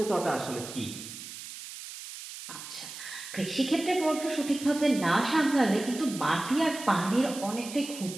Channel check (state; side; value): noise; right; hiss, 11 dB below the sound